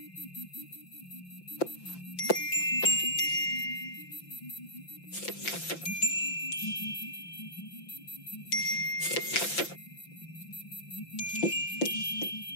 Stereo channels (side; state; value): right; late; 5.8 ms